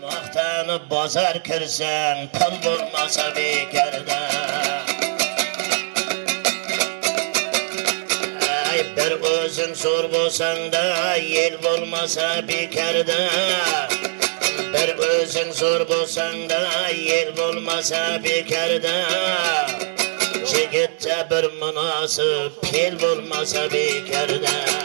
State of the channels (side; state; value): left; silent; digital silence